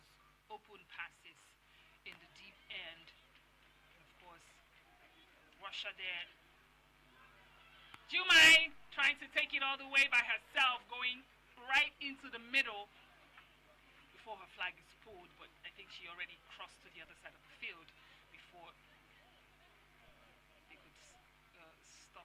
open passes in the deep end. And of course, Russia there. Jumai trying to take it all the way by herself, going right into the middle before her flag is pulled, but I think she already crossed to the other side of the field before they could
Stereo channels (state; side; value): identical; both; correlation 1.00